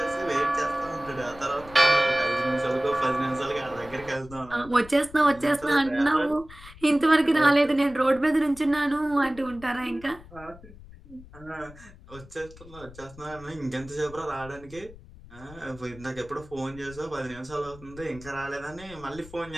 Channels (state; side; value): noise; left; rumble, 19 dB below the sound